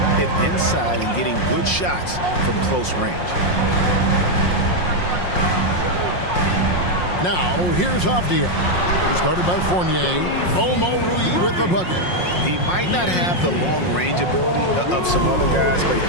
it inside and getting good shots from close range. Now, here's Avdia. He's guarded by Fournier. Omoruyi with the bucket. He might not have the long-range ability of some other guys, but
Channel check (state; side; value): late; right; 5.6 ms